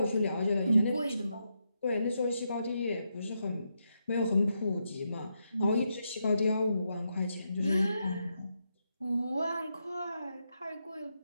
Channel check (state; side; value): inverted; both; correlation -0.83